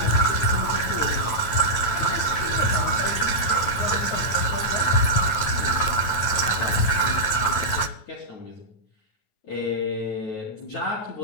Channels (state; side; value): late; right; 9.1 ms